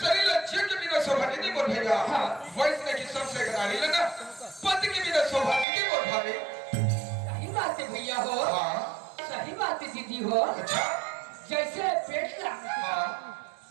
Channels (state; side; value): drops out; left; at 5.7 s